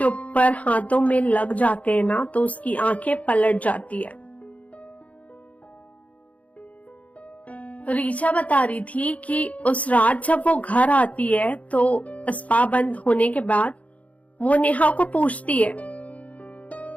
ऊपर हाथों में लग जाते हैं ना तो उसकी आंखें पलट जाती है। ऋचा बता रही थी कि उस रात जब वो घर आती है तो स्पा बंद होने के बाद वो नेहा को पूछती है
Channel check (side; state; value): right; late; 0.068 ms